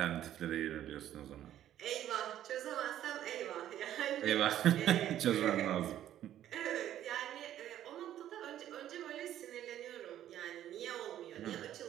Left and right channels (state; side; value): quieter; left; 11.8 dB